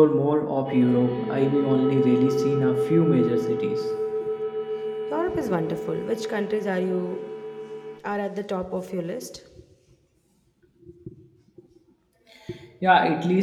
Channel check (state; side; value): identical; both; correlation 1.00